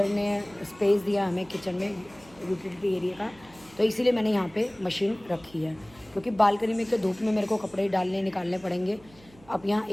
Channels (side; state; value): right; noise; hum, 25 dB below the sound